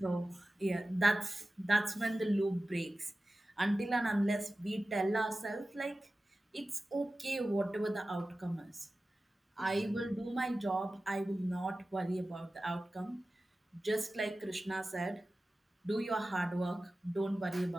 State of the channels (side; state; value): both; normal; correlation 0.95